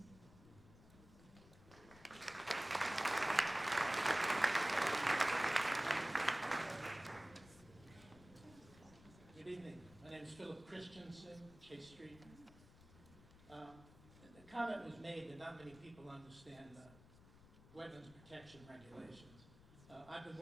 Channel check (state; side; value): noise; left; rumble, 21 dB below the sound